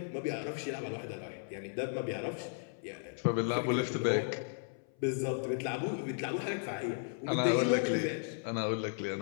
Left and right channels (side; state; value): right; silent; 54 dB below the other